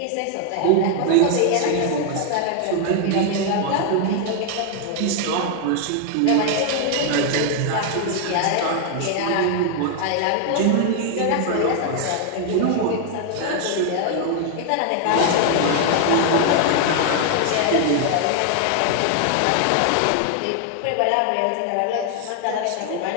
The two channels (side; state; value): both; different; correlation 0.00